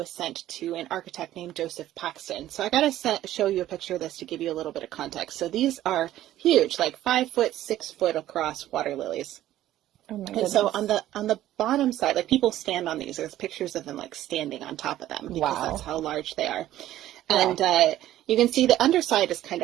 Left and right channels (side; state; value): left; quieter; 13.6 dB